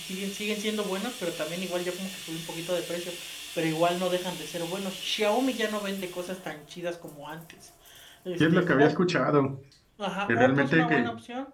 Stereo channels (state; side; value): identical; both; correlation 1.00